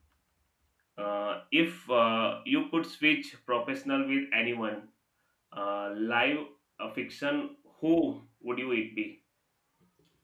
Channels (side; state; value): both; identical; correlation 1.00